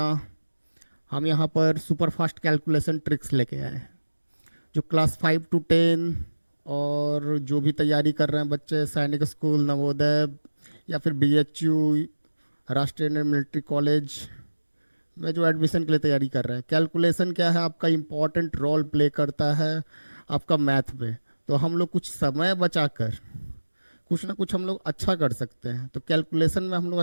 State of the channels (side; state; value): both; inverted; correlation -1.00